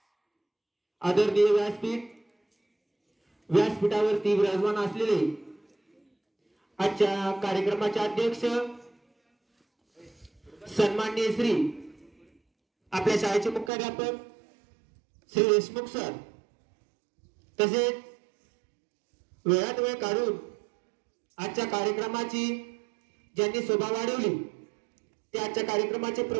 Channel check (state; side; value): drops out; left; at 13.7 s